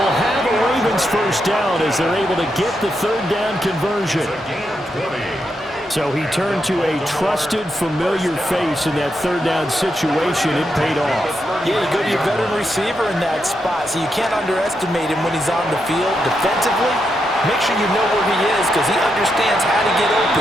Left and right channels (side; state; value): both; normal; correlation 0.83